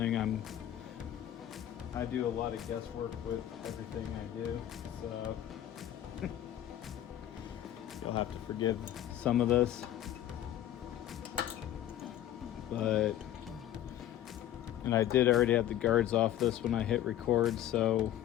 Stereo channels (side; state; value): right; quieter; 12.0 dB